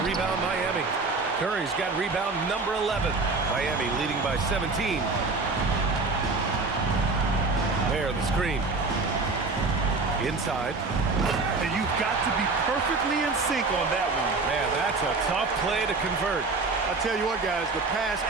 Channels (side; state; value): left; quieter; 3.8 dB